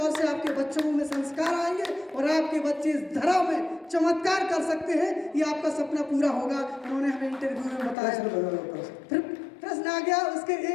से आपके बच्चों में संस्कार आएंगे और आपके बच्चे इस धरा में चमत्कार कर सकते हैं, ये आपका सपना पूरा होगा। उन्होंने हमें इंटरव्यू में बताया। प्रश्न आ गया, उसके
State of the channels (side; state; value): right; drops out; at 8.0 s